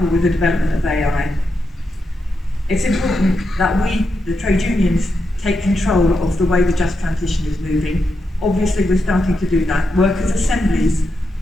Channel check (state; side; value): normal; both; correlation 0.85